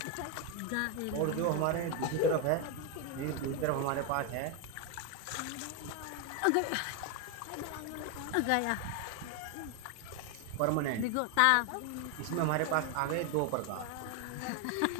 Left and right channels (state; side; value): different; both; correlation 0.01